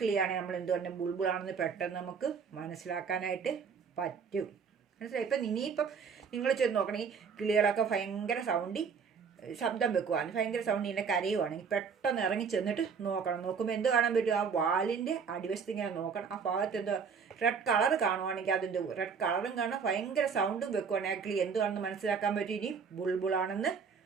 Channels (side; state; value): left; quieter; 6.1 dB